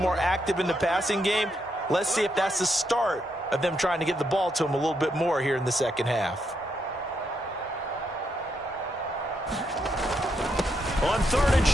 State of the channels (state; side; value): normal; both; correlation 0.79